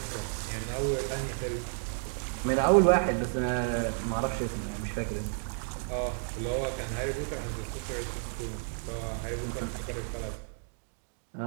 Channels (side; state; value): left; silent; digital silence